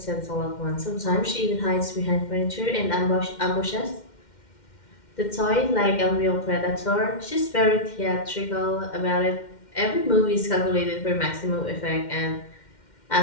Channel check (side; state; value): right; late; 2.1 ms